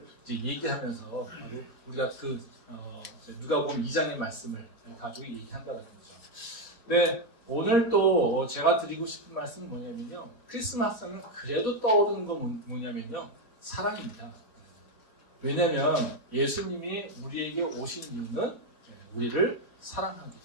이제 얘기하면서 우리가 그 누가복음 2장의 말씀을 가지고 얘기한다는 거죠. 네, 오늘 또 제가 드리고 싶은 말씀은 뭐냐면요. 크리스마스는 그래도 떠오르는 건 뭐냐면요. 사랑입니다. 왜냐하면 예수님이 우리에게 오신 이유는 우리를 사랑하기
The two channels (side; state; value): right; late; 4.2 ms